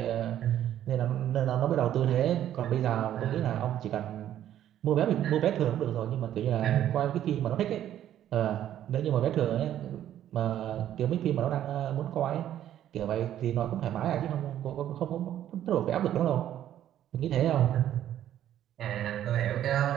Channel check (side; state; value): left; quieter; 11.4 dB